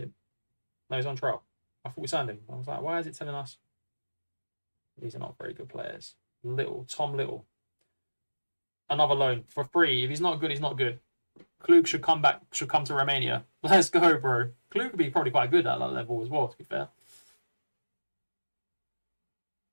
No, he's on trial. I thought we signed him. I was like, why is it telling us these are not very good players? Tom Little. Another loan for free. If he's not good, he's not good. Klug should come to Romania. Let's go, bro. Klug could be probably quite good at that level as well, to be fair.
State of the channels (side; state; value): both; inverted; correlation -1.00